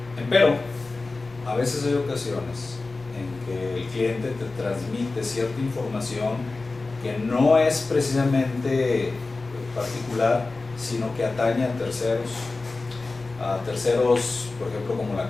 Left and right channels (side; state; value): right; quieter; 3.6 dB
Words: Pero a veces hay ocasiones en que el cliente te transmite cierta información que no es precisamente particular, sino que atañe a terceros, por ejemplo, como la